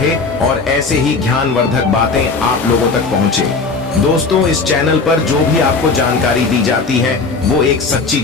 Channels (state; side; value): quieter; right; 4.3 dB